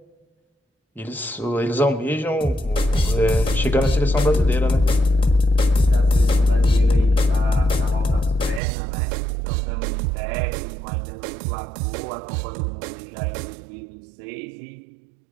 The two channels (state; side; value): drops out; left; at 8.6 s